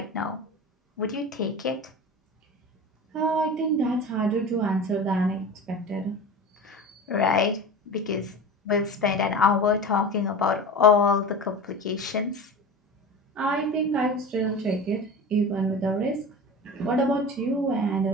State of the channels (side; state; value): both; normal; correlation 0.31